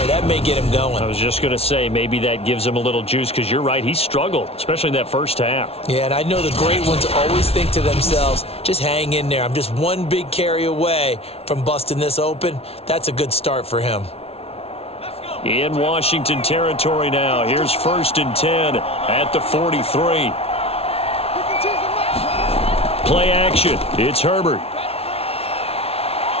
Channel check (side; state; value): right; late; 0.29 ms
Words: that may get him going. I was just going to say, maybe that gives him a little juice, because you're right, he struggled, especially in that first half. Yeah, and I know the great ones always think to themselves, just hang in there. I'm just one big carry away from busting this open. That's a good start for him. In Washington territory now. Here's 1st and 10 at the 43. Play action. It's Herbert.